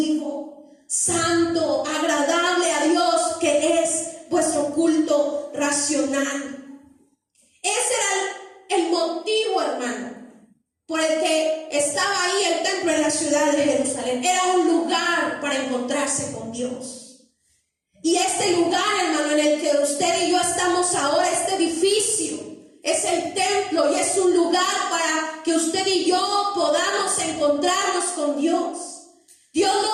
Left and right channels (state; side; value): identical; both; correlation 1.00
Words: santo, agradable a Dios, que es vuestro culto racional. Ese era el motivo, hermano, por el que estaba ahí el templo en la ciudad de Jerusalén. Era un lugar para encontrarse con Dios. Y este lugar, hermano, en el que usted y yo estamos ahora, este edificio, es el templo y es un lugar para que usted y yo podamos encontrarnos con Dios. Dios